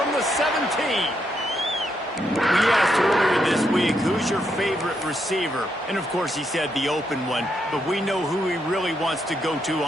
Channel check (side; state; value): both; normal; correlation 0.79